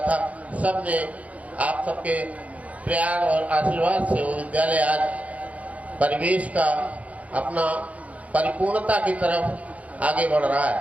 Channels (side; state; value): left; late; 0.068 ms